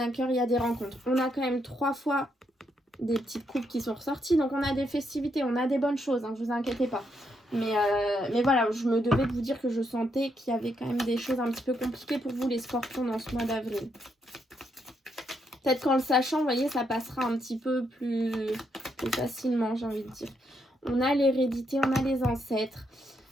cœur. Il y a des rencontres. On a quand même 3 fois des petites coupes qui sont ressorties, donc on a des festivités, on a des bonnes choses, hein, vous inquiétez pas. Mais voilà, je me devais de vous dire que je sentais qu'il y avait quand même des choses un petit peu compliquées pour vous les scorpions dans ce mois d'avril. Peut-être qu'en le sachant, vous voyez, ça passera un petit peu plus facilement, j'ai envie de dire. On a l'hérédité, on a les ancêtres.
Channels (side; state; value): both; normal; correlation 0.77